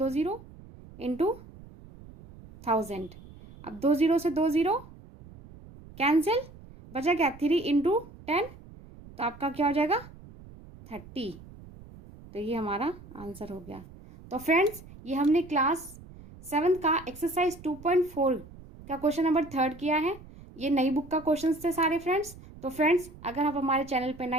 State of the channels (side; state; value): right; noise; rumble, 19 dB below the sound